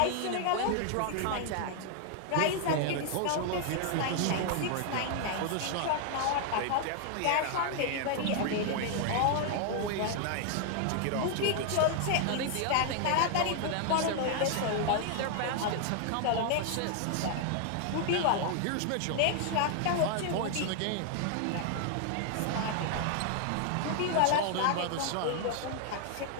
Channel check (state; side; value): different; both; correlation 0.00